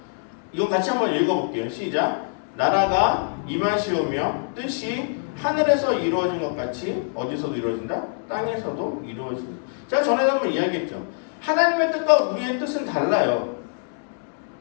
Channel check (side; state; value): right; silent; digital silence